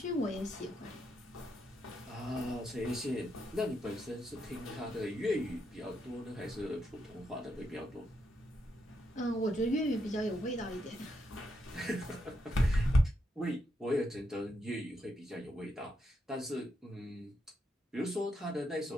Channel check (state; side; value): normal; both; correlation 0.80